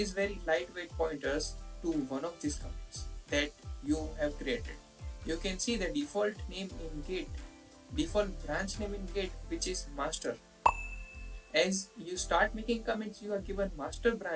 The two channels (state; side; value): identical; both; correlation 1.00